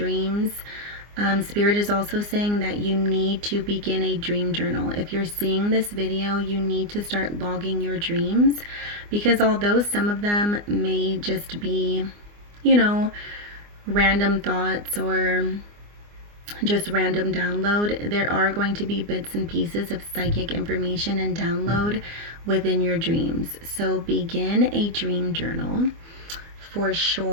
Spirit is also saying that you need to begin a dream journal. If you're seeing this video, you need to start logging your dreams, because although some of them may just be, random thoughts or just random download, there are going to be bits and pieces of psychic information and download within your dreams. So begin a dream journal for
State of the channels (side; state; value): left; late; 24 ms